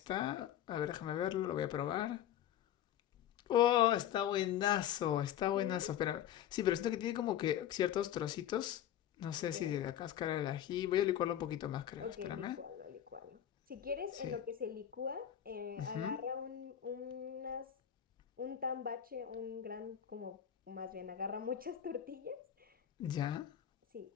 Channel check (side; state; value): right; quieter; 10.6 dB